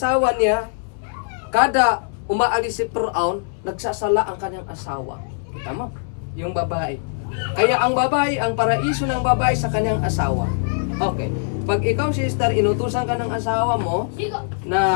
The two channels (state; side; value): silent; right; 61 dB below the other